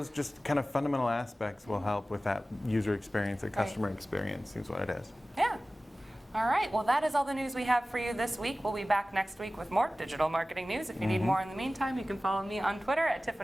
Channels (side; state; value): both; normal; correlation 0.97